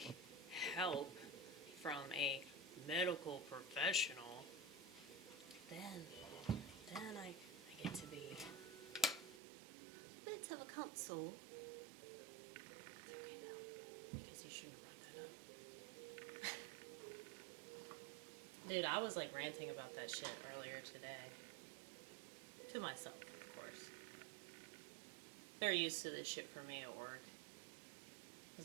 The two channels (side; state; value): left; drops out; at 9.4 s